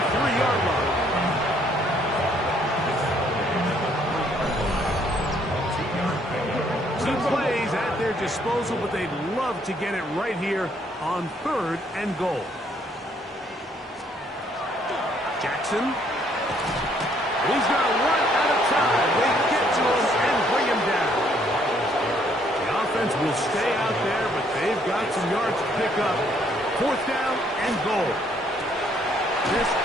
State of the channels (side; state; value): both; normal; correlation 0.66